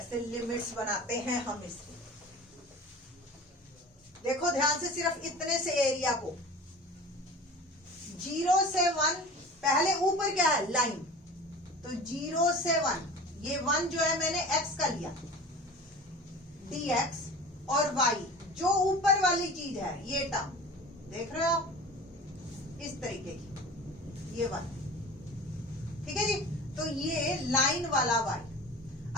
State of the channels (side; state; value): both; normal; correlation 0.38